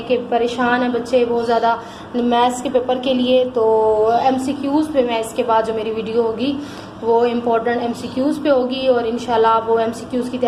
कि परेशान हैं बच्चे बहुत ज़्यादा मैथ्स के पेपर के लिए, तो MCQs पे मैं इसके बाद जो मेरी वीडियो होगी वो इम्पोर्टेंट MCQs पे होगी और इंशाल्लाह आप वो MCQs की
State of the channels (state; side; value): identical; both; correlation 1.00